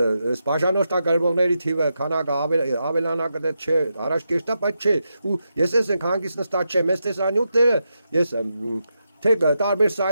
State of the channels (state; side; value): inverted; both; correlation -0.86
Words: բաժանորդագրվողների թիվը քանակը ավելանա կդե չէ առաջ կեշտա բայց չէ ու ես ենք հանգիստ նստած չեմ ես տեսանյութները ես թե տարբեր